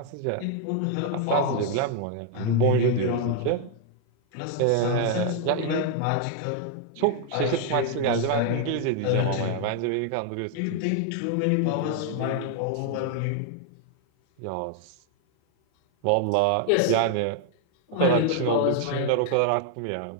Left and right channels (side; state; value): both; different; correlation 0.00